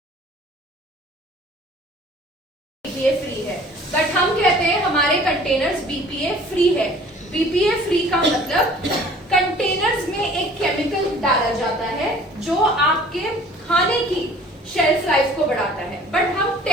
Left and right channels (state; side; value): normal; both; correlation 0.50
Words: फ्री है, बट हम कहते हैं हमारे कंटेनर्स बीपीए फ्री है। बीपीए फ्री का मतलब कंटेनर्स में एक केमिकल डाला जाता है जो आपके खाने की शेल्फ लाइफ को बढ़ाता है। बट हम